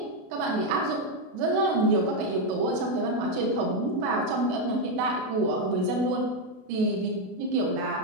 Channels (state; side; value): late; left; 32 ms